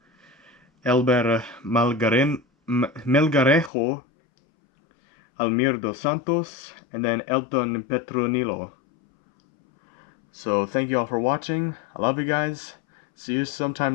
Elber Melgarejo, Almir dos Santos, and then Elton Petronilo. So thank you all for watching. I love you guys. See you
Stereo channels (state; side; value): drops out; right; at 3.7 s